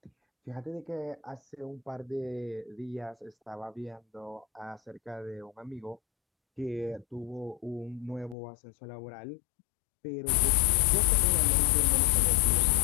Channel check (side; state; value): right; drops out; at 8.3 s